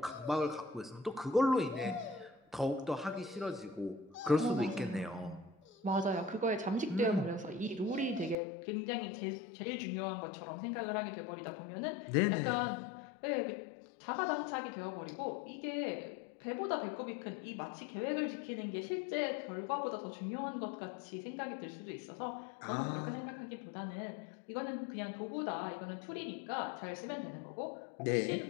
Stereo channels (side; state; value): right; drops out; at 8.3 s